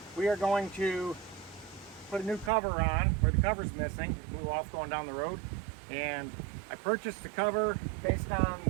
We are going to put a new cover on where the cover's missing. It blew off going down the road, and I purchased the cover based on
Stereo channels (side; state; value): left; drops out; at 2.5 s